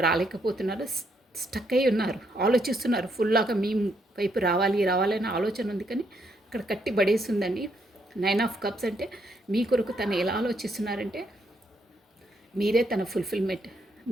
రాలేకపోతున్నారు, స్టక్ అయి ఉన్నారు, ఆలోచిస్తున్నారు. ఫుల్లాగా మీ వైపు రావాలి రావాలనే ఆలోచన ఉంది, కానీ అక్కడ కట్టి పడేస్తుందండి. 9 ఆఫ్ కప్స్ అంటే మీ కొరకు తను ఎలా ఆలోచిస్తున్నారంటే మీరే తన ఫుల్ఫిల్మెంట్.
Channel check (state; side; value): normal; both; correlation 0.74